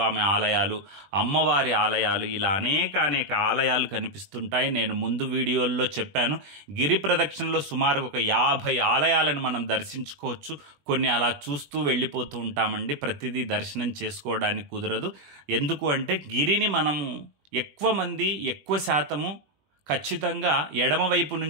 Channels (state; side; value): late; left; 20 ms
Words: ఆలయాలు, అమ్మవారి ఆలయాలు, ఇలా అనేక ఆలయాలు కనిపిస్తుంటాయి. నేను ముందు వీడియోల్లో చెప్పాను, గిరి ప్రదక్షిణలో సుమారు ఒక 50 ఆలయాలను మనం దర్శించుకోవచ్చు. కొన్ని అలా చూస్తూ వెళ్ళిపోతూ ఉంటామండి. ప్రతిదీ దర్శనం చేసుకోవడానికి కుదరదు. ఎందుకు అంటే గిరిని మనము ఎక్కువ శాతము ఖచ్చితంగా ఎడమవైపు